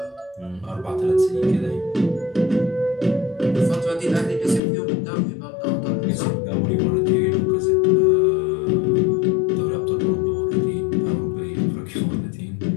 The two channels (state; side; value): drops out; right; at 4.6 s